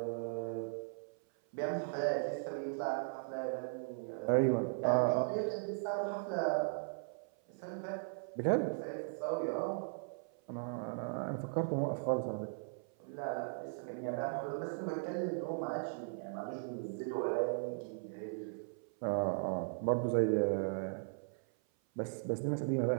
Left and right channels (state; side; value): silent; left; 52 dB below the other